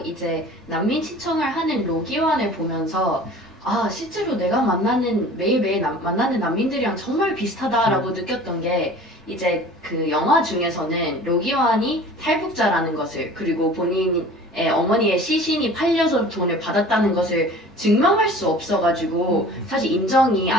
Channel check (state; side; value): normal; both; correlation 0.44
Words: 이제 난민 신청을 하는 로기환을 보면서 실제로 내가 매일매일 만나는 난민들이랑 정말 비슷하다라고 느꼈던 게 이제 그 영화 중에서는 로기환이 탈북자라는 것을 그리고 본인의 어머니의 시신이 팔려서 돈을 받았다는 것을 증명할 수 없어가지고 사실 인정이